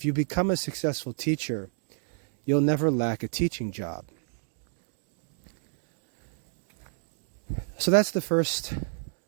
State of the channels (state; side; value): silent; left; digital silence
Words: you become a successful teacher, you'll never lack a teaching job. So that's the first